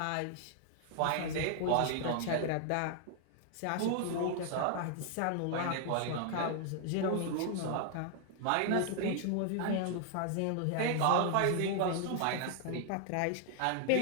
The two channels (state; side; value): different; both; correlation 0.00